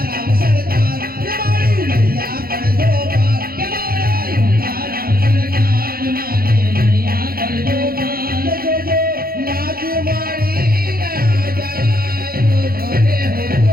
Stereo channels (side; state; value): left; late; 0.43 ms